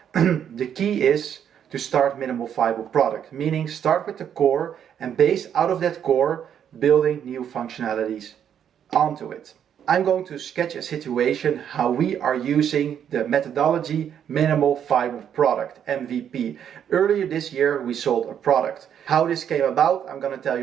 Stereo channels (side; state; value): left; quieter; 9.0 dB